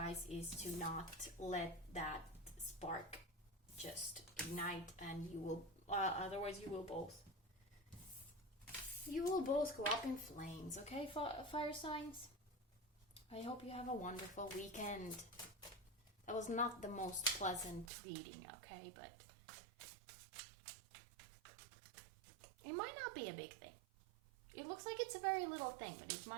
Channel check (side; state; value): left; drops out; at 17.9 s